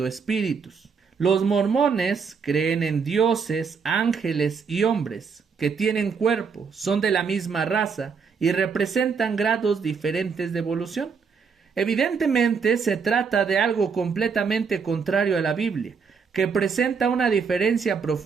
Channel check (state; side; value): quieter; left; 5.7 dB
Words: espíritus. Los mormones creen en dioses, ángeles y hombres que tienen cuerpo, son de la misma raza y representan grados diferentes de evolución. Evidentemente se trata de algo completamente contrario a la Biblia, que presenta una diferencia